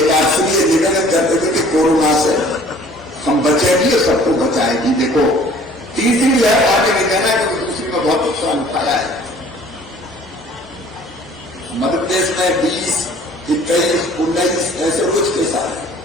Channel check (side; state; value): both; normal; correlation 0.53